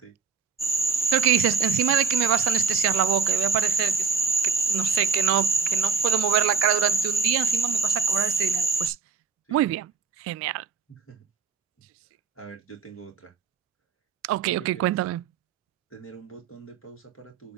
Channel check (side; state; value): left; quieter; 5.6 dB